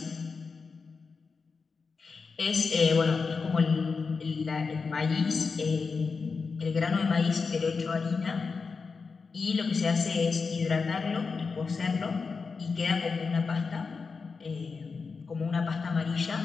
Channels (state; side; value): quieter; right; 4.8 dB